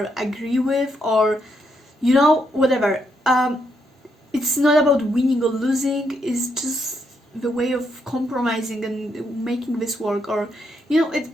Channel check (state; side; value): normal; both; correlation 0.78